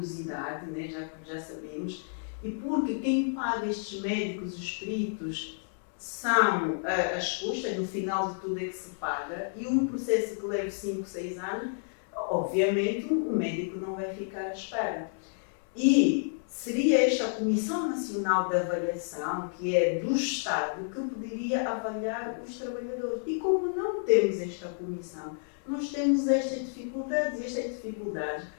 né, já sabemos, e porque quem paga estes médicos, os peritos, são as custas, no final de tudo é que se paga, e um processo que leva 5, 6 anos, obviamente o médico não vai ficar à espera. E seria esta a Comissão Nacional de Avaliação, que é do Estado, que poderia avaliar os trabalhadores. E como não temos esta comissão, nós temos estas dificuldades, e estas dificuldades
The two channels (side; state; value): right; silent; digital silence